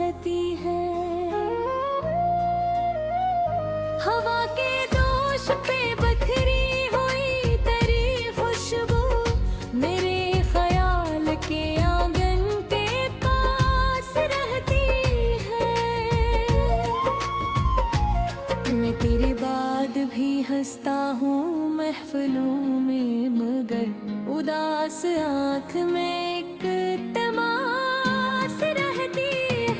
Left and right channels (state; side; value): identical; both; correlation 1.00